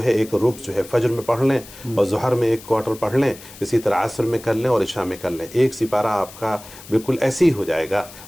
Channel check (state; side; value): noise; left; hiss, 18 dB below the sound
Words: ہے، ایک ربع جو ہے فجر میں پڑھ لیں، اور ظہر میں ایک کوارٹر پڑھ لیں، اسی طرح عصر میں کر لیں اور عشاء میں کر لیں۔ ایک سپارہ آپ کا بالکل ایسے ہی ہو جائے گا،